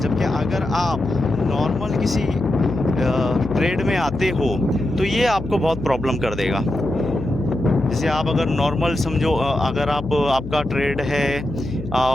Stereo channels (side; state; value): left; noise; hum, 10 dB below the sound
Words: जबकि अगर आप नॉर्मल किसी ट्रेड में आते हो तो ये आपको बहुत प्रॉब्लम कर देगा। जैसे आप अगर नॉर्मल समझो, अगर आपका ट्रेड है